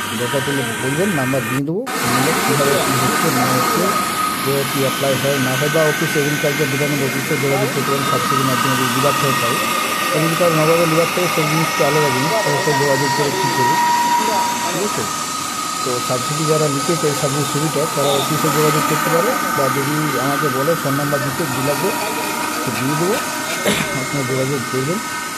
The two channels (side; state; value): both; identical; correlation 1.00